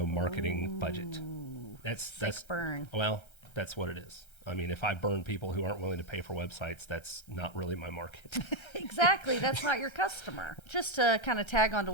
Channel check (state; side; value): late; right; 1.3 ms